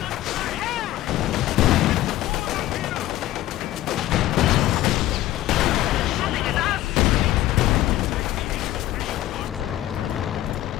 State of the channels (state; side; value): quieter; right; 14.8 dB